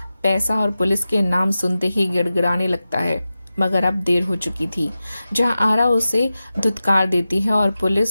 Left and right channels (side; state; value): both; inverted; correlation -0.94